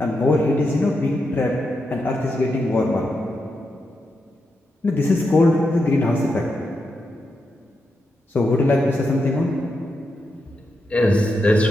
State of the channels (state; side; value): normal; both; correlation 0.85